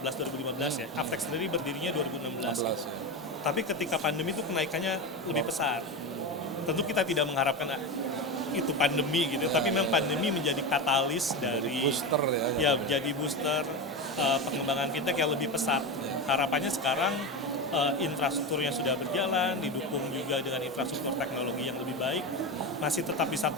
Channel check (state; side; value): normal; both; correlation 0.19